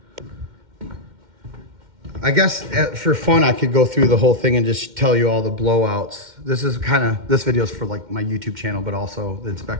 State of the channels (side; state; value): left; late; 2.1 ms